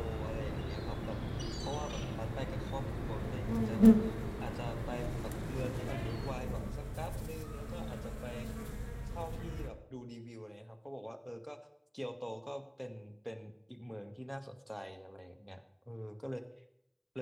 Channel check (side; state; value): both; identical; correlation 1.00